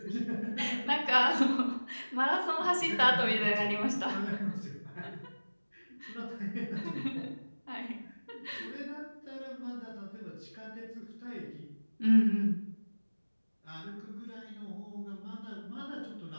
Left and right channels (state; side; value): inverted; both; correlation -1.00